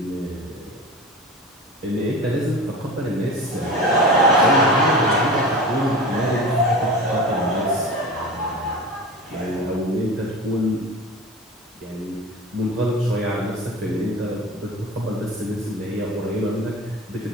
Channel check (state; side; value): normal; both; correlation 0.32